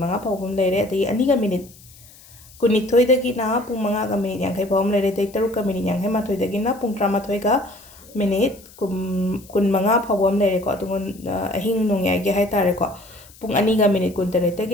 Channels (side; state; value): left; noise; hiss, 23 dB below the sound